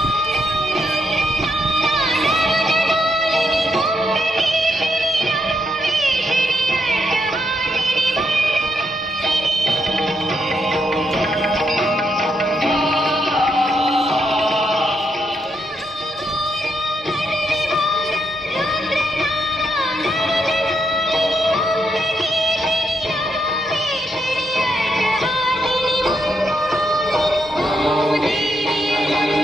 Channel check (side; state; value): both; normal; correlation 0.79